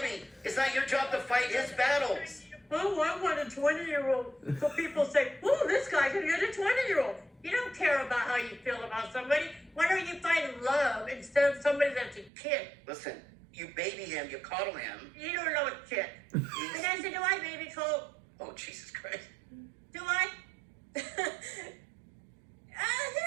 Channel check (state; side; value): drops out; left; at 12.3 s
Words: it's not your job to fight his battles. Oh, I want a 20-year-old. So people say, oh, this guy can get a 20-year-old. You don't care about how you feel about somebody. Why don't you find love instead of somebody that's a kid? Listen, you baby him, you coddle him. You don't know a shit. And I said, do I baby Colt? Oh, Jesus Christ. Do I? Here